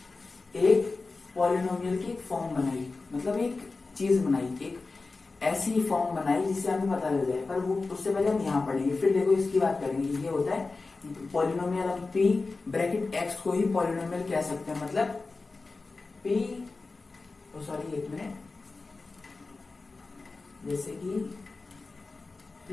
एक पॉलिनोमियल की एक फॉर्म बनाई, मतलब एक चीज बनाई, एक ऐसी फॉर्म बनाई जिससे हमें पता लग जाए। पर वो उससे पहले हम यहाँ पढ़ेंगे, फिर देखो इसकी बात करेंगे। ये होता है पॉलिनोमियल। हम पी ब्रैकेट एक्स को ही पॉलिनोमियल कह सकते हैं। मतलब पी, सॉरी एक मिनट, जैसे कि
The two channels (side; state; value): right; quieter; 3.8 dB